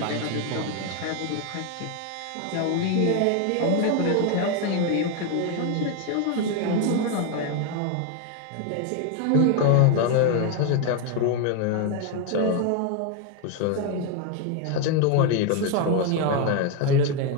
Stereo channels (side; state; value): both; different; correlation 0.01